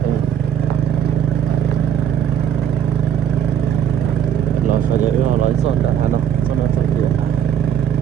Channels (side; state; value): left; quieter; 8.9 dB